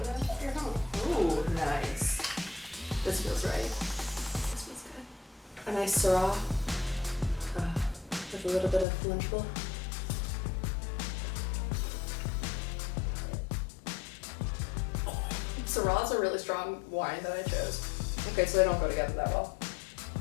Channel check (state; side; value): drops out; right; at 8.8 s